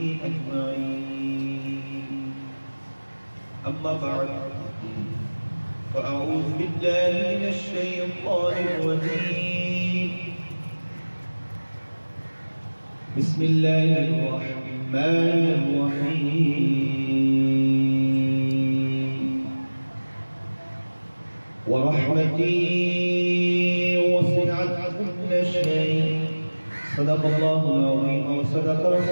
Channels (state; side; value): inverted; both; correlation -1.00